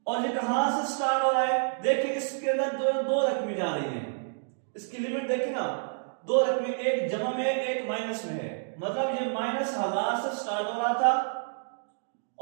और ये कहां से स्टार्ट हो रहा है? देखिए इसके अंदर दो रकमें जा रही हैं, इसकी लिमिट देखिए ना, दो रकमें, एक जमा में एक माइनस में है, मतलब ये -1000 से स्टार्ट हो रहा था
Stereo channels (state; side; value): silent; left; digital silence